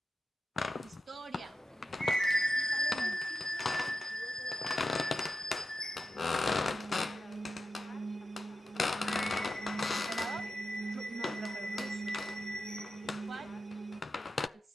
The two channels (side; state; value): both; normal; correlation 0.91